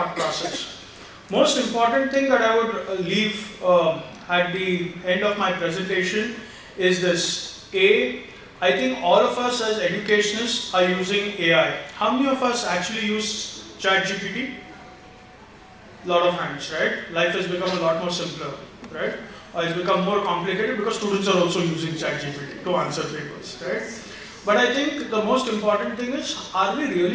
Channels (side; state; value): both; identical; correlation 1.00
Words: process. Most important thing that I would leave at the end of my presentation is this. I think all of us as educationists are using AI. How many of us actually use 𝗟𝗶𝗸𝗲? A lot of hands, right? Life has become a lot more simpler, right? It's become more complicated because students are also using 𝗟𝗶𝗸𝗲 to answer papers, right? But I think the most important thing is, are we